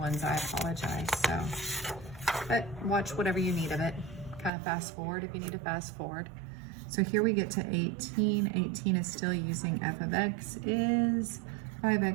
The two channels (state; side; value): drops out; left; at 4.5 s